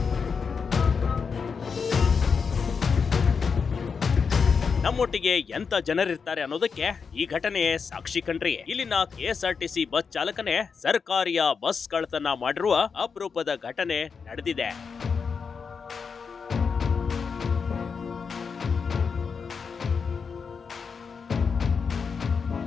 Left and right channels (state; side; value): quieter; right; 5.7 dB